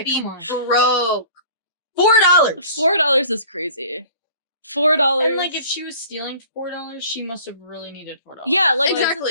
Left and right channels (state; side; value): inverted; both; correlation -0.47